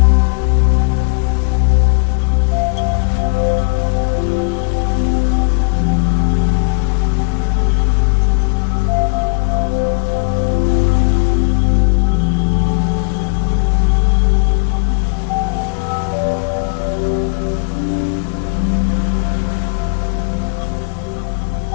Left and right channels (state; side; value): quieter; right; 33.5 dB